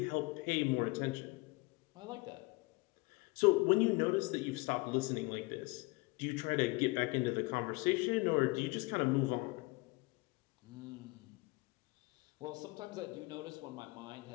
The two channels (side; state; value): right; quieter; 25.1 dB